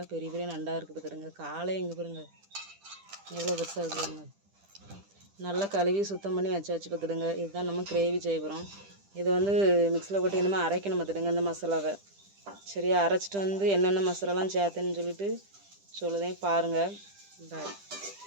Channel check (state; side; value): late; left; 10 ms